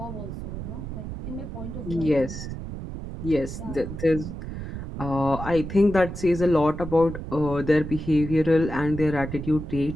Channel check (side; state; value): right; noise; rumble, 8 dB below the sound